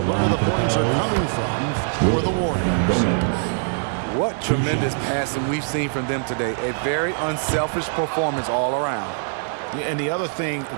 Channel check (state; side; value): silent; left; 57 dB below the other